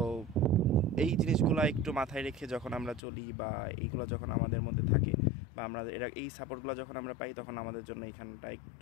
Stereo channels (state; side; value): drops out; right; at 3.0 s